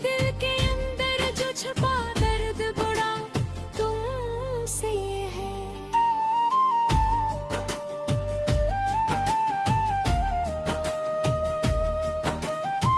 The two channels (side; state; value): both; identical; correlation 1.00